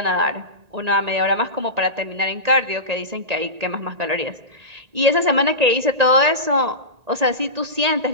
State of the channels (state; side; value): late; left; 1.8 ms